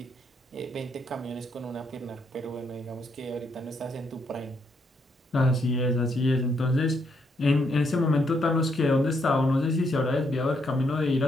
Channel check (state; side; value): normal; both; correlation 0.75